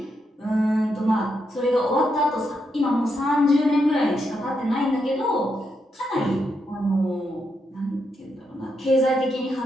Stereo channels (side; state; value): both; normal; correlation 0.81